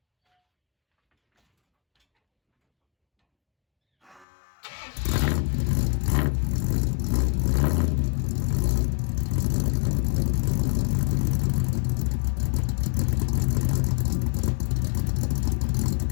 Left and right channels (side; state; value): right; drops out; at 4.2 s